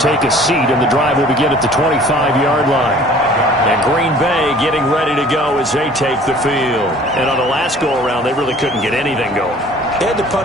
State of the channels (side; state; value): both; normal; correlation 0.50